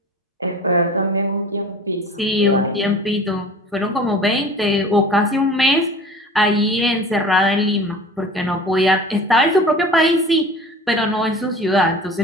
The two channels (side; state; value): both; normal; correlation 0.41